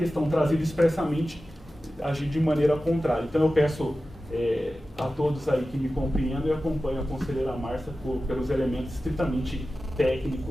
trazida expressamente, agir de maneira contrária. Então, eu peço a todos aí que me compreendem e acompanham a conselheira Márcia pelos elementos estritamente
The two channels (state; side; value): normal; both; correlation 0.94